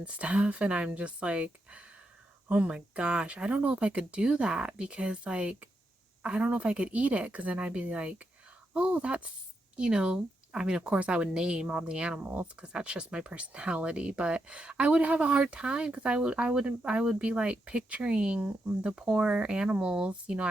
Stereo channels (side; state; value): both; normal; correlation 0.83